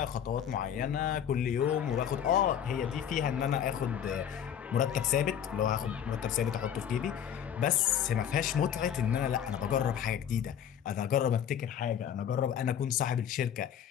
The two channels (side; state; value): right; quieter; 9.1 dB